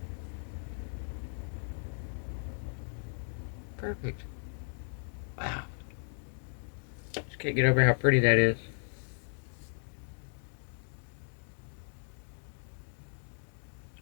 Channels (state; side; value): silent; right; 54 dB below the other